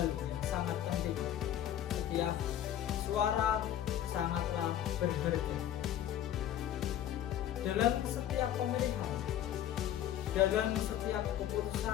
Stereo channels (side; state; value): right; quieter; 11.2 dB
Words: yang sangat penting: setiap suara sangatlah berharga. Dalam setiap pemilihan, dalam setiap